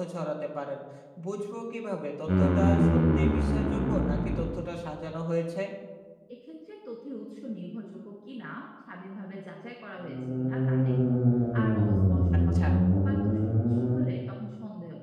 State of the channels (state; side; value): identical; both; correlation 1.00